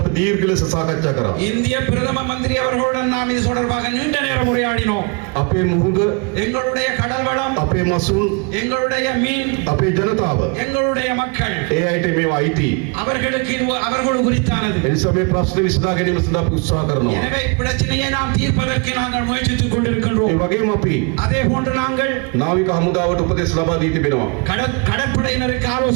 අපි දීර්ඝ ලෙස සාකච්ඡා කරා. இந்திய பிரதம மந்திரி அவர்களுடன் நாம் இது தொடர்பாக நீண்ட நேரம் உரையாடினோம். අපේ මුහුද எங்களுடைய கடல் வளம் අපේ මසුන් எங்களுடைய மீன் අපේ ජනතාව எங்களுடைய மக்கள் ඒ අයට මේවා අයිති. அவர்களுக்கு இது அவர்கள் குறித்தானது. ඒ නිසා මේ ප්‍රශ්නේ විසඳා ගැනීම සඳහා අපි උත්සාහ කරනවා. எனவே பிரச்சனையை நாம் தீர்ப்பதற்கு நாங்கள் முயற்சித்துக் கொண்டிருக்கின்றோம். ඒ වගේම අපි அதே போன்று நாங்கள் නාවික හමුදාවට උපදෙස් ලබා දී තිබෙනවා. கடற்படையினருக்கு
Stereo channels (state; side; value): quieter; left; 33.3 dB